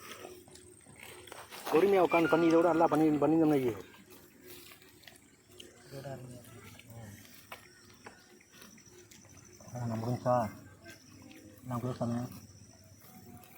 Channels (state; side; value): identical; both; correlation 1.00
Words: பொறுமையாக உட்காந்து பண்ணி இதை விட நல்லா பண்ணியிருந்தோம்னா நான் முடிஞ்சா நான் கூட சொன்னேன்.